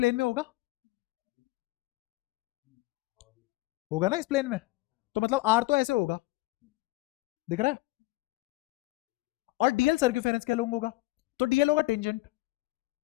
में होगा, होगा ना इस प्लेन में, तो मतलब आर तो ऐसे होगा, दिख रहा है? और डीएल सर्क्यूफेरेंस क्या लूंगा होगा, तो डीएल होगा टेंजेंट।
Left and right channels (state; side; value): quieter; right; 20.9 dB